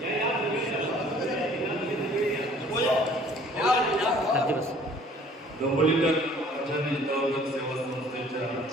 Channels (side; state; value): both; normal; correlation 0.54